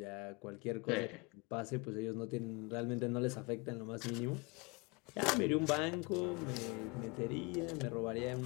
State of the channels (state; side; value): quieter; right; 28.9 dB